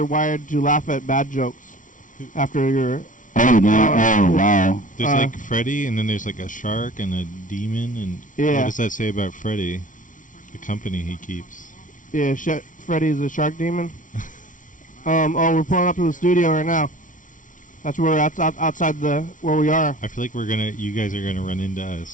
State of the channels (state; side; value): late; right; 0.38 ms